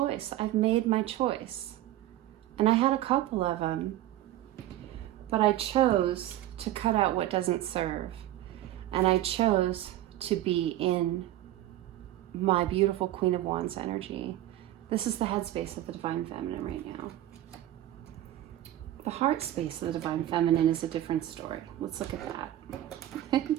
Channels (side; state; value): left; quieter; 13.9 dB